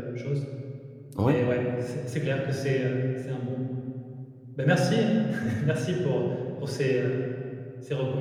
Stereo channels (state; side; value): identical; both; correlation 1.00